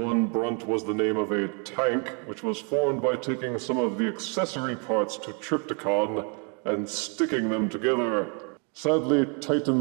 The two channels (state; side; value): quieter; left; 37.0 dB